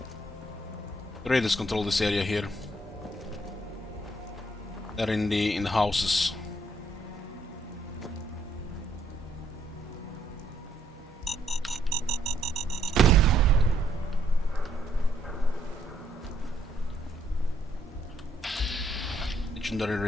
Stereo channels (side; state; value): both; normal; correlation 0.70